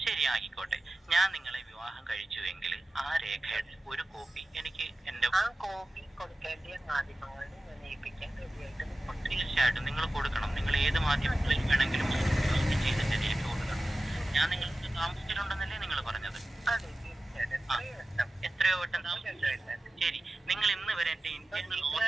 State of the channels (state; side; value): normal; both; correlation 0.95